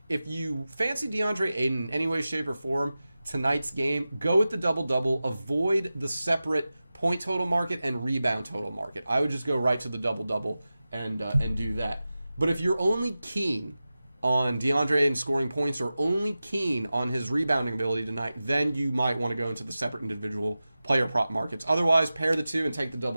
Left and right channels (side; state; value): both; inverted; correlation -0.95